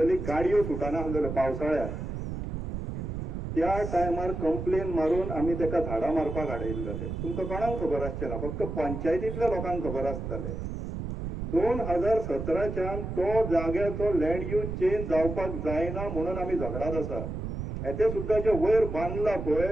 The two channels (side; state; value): right; noise; rumble, 5 dB below the sound